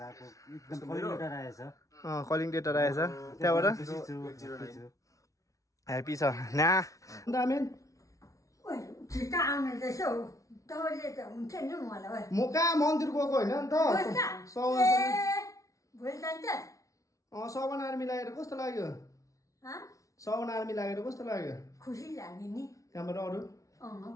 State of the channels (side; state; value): right; late; 0.16 ms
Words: एकदम कलिङ लेटर आएछ कलिङ लेटर आएछ त्यहाँबाट ह्यापी छ ना दामेन ओइ छिटा आउने त्यसो तबले त हुन्छ नि मलाई म कहाँ मन्दिर गएको हैन नि त भोलि जान्छ सवन आर्मी लागेर कस्तो लाग्यो सवन आर्मी लागेर कस्तो लाग्यो खुसी लाग्यो नि त्यहाँबाट अरु